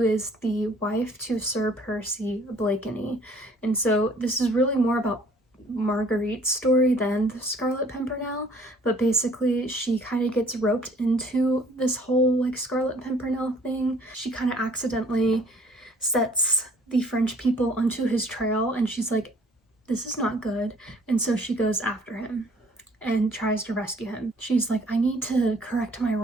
is the wife to Sir Percy Blakeney. And so this is really more about Marguerite's story than the Scarlet Pimpernel, but basically she kind of gets roped into this whole like Scarlet Pimpernel thing. She kind of accidentally sets the French people onto his trail and she's like, this is not good. And so she goes after him and tries to rescue him. She's like, I need to correct my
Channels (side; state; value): both; normal; correlation 0.57